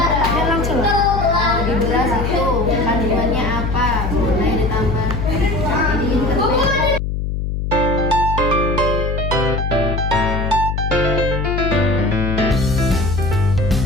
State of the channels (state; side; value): noise; left; hum, 2 dB below the sound